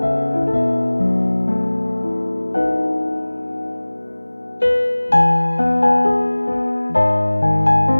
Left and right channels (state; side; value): inverted; both; correlation -1.00